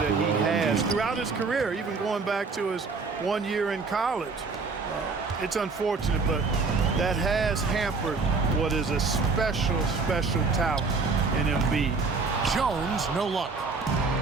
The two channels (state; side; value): quieter; left; 4.3 dB